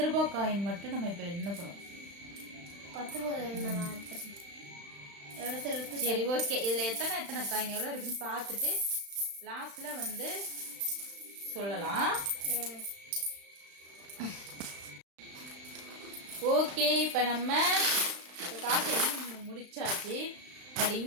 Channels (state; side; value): late; left; 35 ms